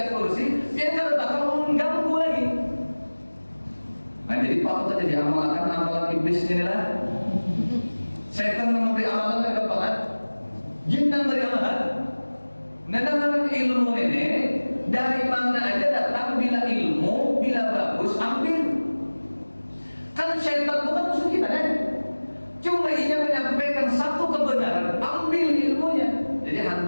kursi, dia kan bakal mengganggu lagi. Nah jadi patut aja diamalkan amalan iblis inilah. Setan memberi amalan yang gampang. Jin yang beri amalan. Nah, ilmu ini dari mana aja datang, bila ilmu, bila bagus ambil. Kan syaitan bukan musuh kita kan? Cuma ia menyampaikan satu kebenaran, ambil ilmunya. Jadi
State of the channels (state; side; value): inverted; both; correlation -1.00